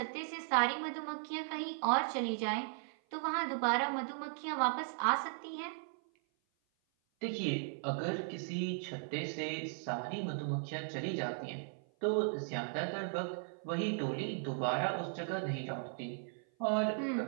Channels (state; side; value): silent; left; 53 dB below the other